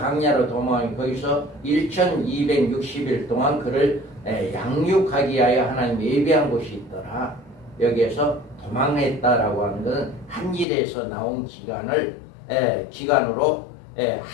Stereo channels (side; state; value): right; drops out; at 10.7 s